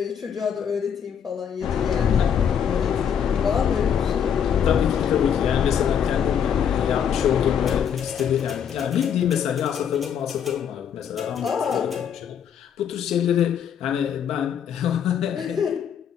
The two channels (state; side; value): quieter; right; 8.2 dB